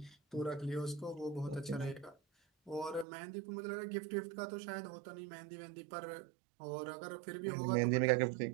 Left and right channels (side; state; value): left; drops out; at 3.1 s